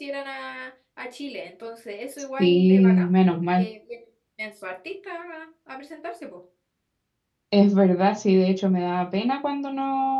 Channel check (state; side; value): identical; both; correlation 1.00